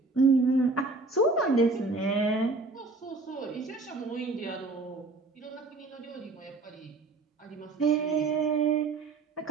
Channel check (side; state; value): left; quieter; 3.4 dB